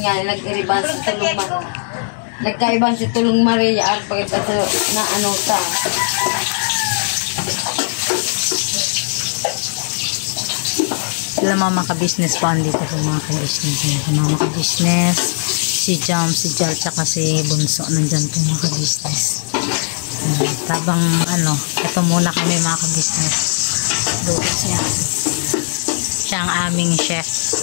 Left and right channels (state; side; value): silent; right; 67 dB below the other